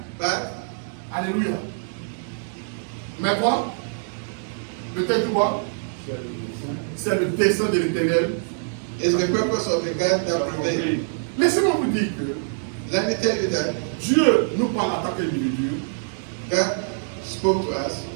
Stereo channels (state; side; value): silent; left; digital silence